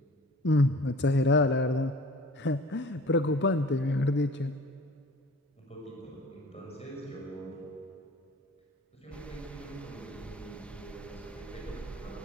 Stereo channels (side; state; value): both; normal; correlation 0.46